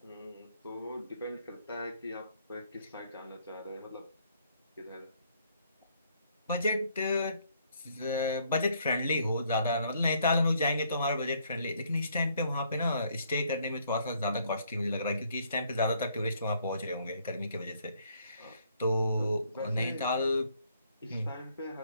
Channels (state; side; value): inverted; both; correlation -0.67